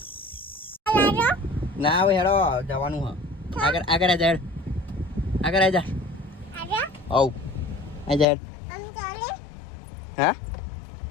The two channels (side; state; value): right; drops out; at 8.2 s